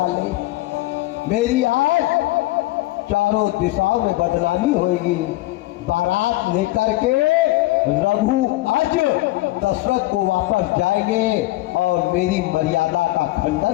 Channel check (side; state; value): right; quieter; 18.1 dB